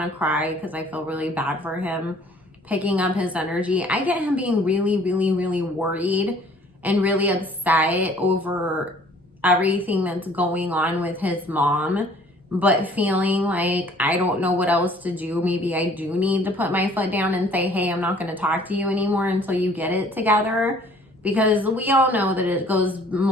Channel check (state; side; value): normal; both; correlation 0.55